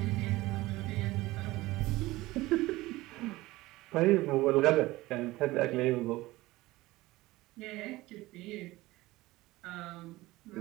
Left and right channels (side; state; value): left; quieter; 19.0 dB